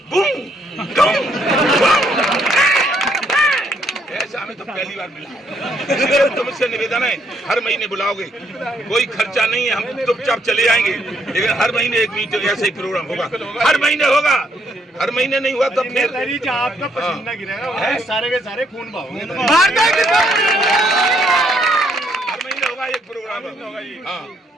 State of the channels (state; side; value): normal; both; correlation 0.71